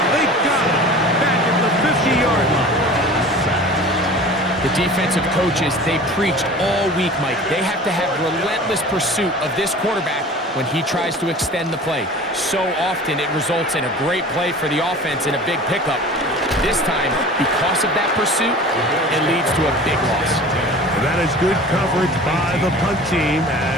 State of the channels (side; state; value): both; normal; correlation 0.40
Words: They got him back at the 50-yard line. The defensive coaches, they preached all week, Mike. They have to have relentless pursuit of this quarterback when he tries to extend the play. So often it results in a great play for the offense and a big pickup. This time, because of that pursuit, it leads to a big loss. That is good coverage by the punt team